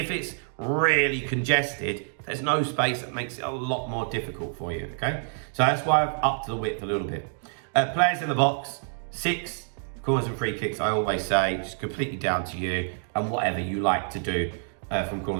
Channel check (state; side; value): silent; left; 60 dB below the other